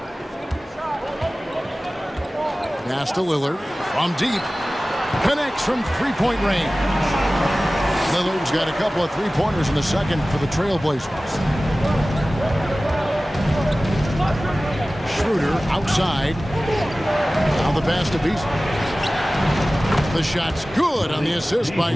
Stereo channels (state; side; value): normal; both; correlation 0.97